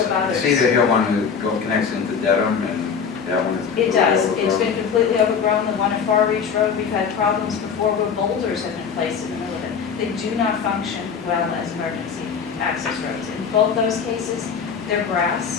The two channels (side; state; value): right; quieter; 6.5 dB